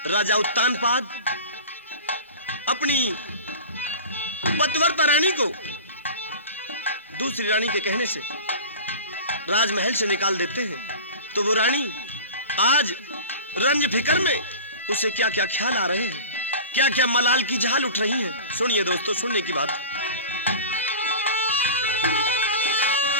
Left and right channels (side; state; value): both; inverted; correlation -0.35